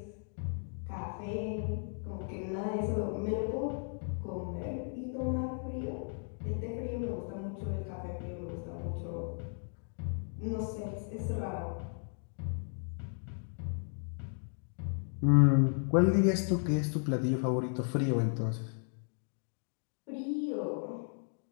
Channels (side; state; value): right; silent; 54 dB below the other